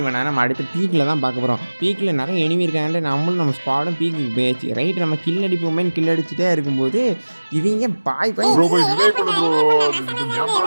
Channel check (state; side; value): inverted; both; correlation -1.00